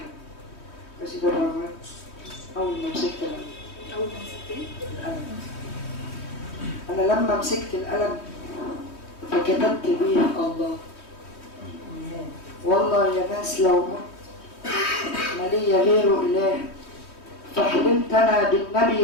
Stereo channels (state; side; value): late; right; 3.2 ms